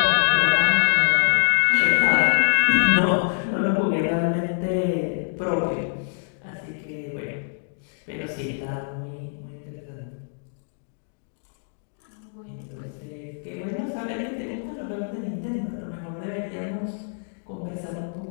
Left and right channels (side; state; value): right; silent; digital silence